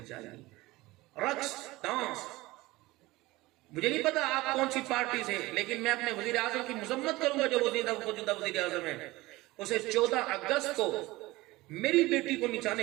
چاہیے. رقص ڈانس، مجھے نہیں پتا آپ کون سی پارٹی سے، لیکن میں اپنے وزیر اعظم کی مذمت کروں گا جو موجودہ وزیر اعظم ہے. اسے 14 اگست کو میری بیٹی کو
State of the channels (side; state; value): left; quieter; 20.0 dB